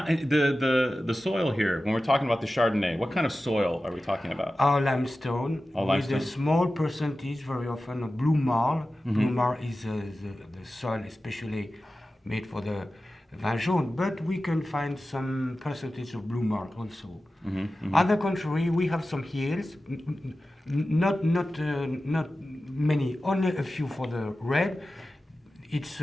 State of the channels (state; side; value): normal; both; correlation 0.94